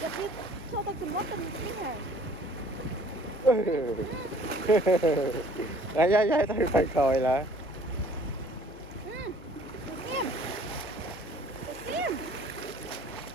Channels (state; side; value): noise; left; hum, 19 dB below the sound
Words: giật đi cho tôi chùm lót từng cái này đấy đấy đấy tôi phải coi là xem xem